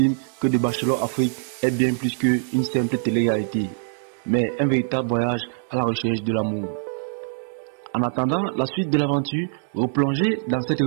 que The Bachelor Afrique est bien plus qu'une simple télé-réalité, mais un véritable voyage à la recherche de l'amour. En attendant la suite de l'aventure, replongez dans cette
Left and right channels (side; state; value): left; silent; digital silence